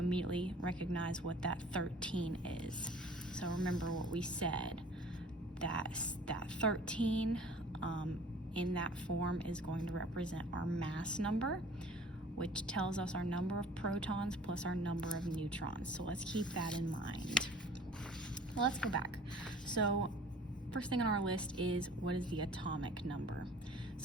recognize what that 13 is. So remember what we said, that 13 in that form is going to represent our mass number, which tells us our number of protons plus our number of neutrons. So let's keep that in mind. Well, let's go back. So first thing on our list is, what is the atomic number?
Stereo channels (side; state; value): both; normal; correlation 0.48